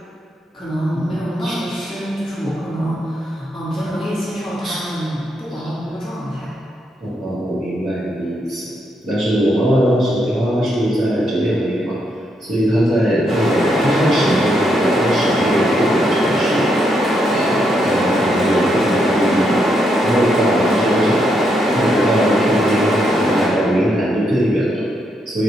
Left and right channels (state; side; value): normal; both; correlation 0.78